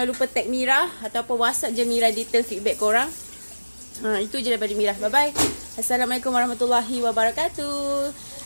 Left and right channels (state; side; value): inverted; both; correlation -1.00